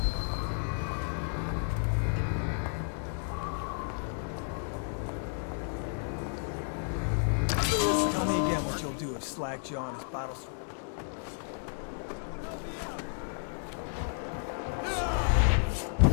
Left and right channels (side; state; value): right; silent; digital silence